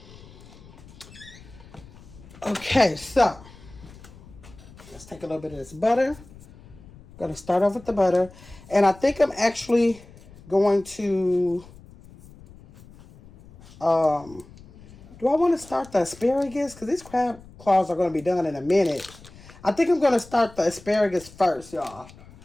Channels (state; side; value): noise; left; rumble, 21 dB below the sound